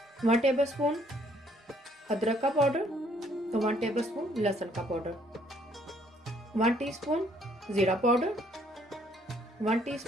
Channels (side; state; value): both; normal; correlation 0.65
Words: 1 टेबलस्पून अदरक का पाउडर और 1 टेबलस्पून लहसुन का पाउडर, 1 टीस्पून जीरा पाउडर, 1